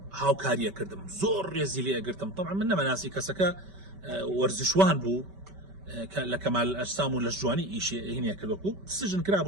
هاوکاریە کردم، زۆر ڕێزی لێ ئەگرتم. طبعا من نەمەناسی کەسەکە وەرزشوان بوو لە کەمال ئەجسام و لە جوانی ئیشی هینە کردوەکو سژن کرا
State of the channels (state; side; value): late; left; 5.2 ms